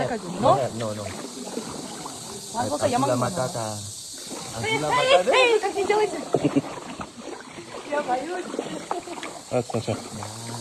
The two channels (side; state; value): both; identical; correlation 1.00